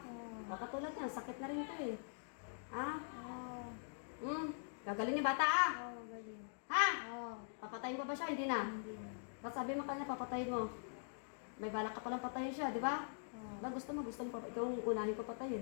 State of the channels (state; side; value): silent; right; digital silence